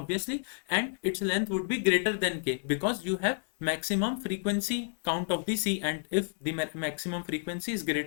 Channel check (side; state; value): right; silent; digital silence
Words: and its length would be greater than k, because you have maximum frequency count of the C, and if the maximum frequency is